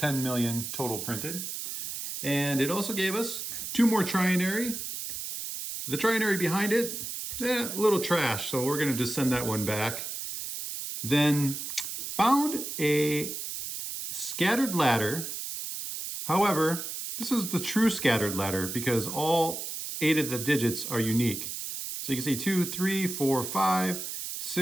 million total printed. And it also gave us 2 more trinary. The trinary behind it, a little trash, so we're gonna just send that one back. Then found a scattered ladder. However, this is the true scattered ladder because all 8 of the digits are unique. So you can see 2, 3, 4, 5,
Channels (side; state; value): right; noise; hiss, 6 dB below the sound